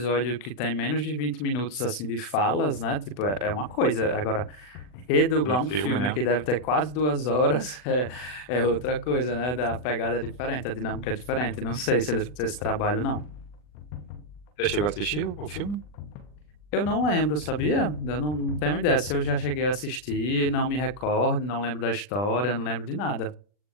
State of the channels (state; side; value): late; right; 40 ms